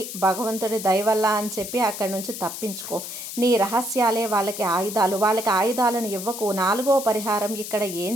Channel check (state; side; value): noise; left; hiss, 8 dB below the sound